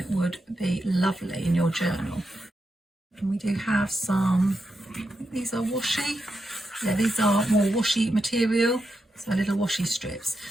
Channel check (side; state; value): both; normal; correlation 0.86